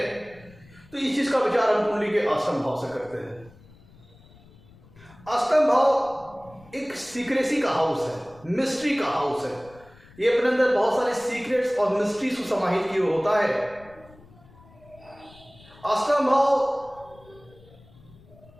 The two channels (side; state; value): left; noise; rumble, 25 dB below the sound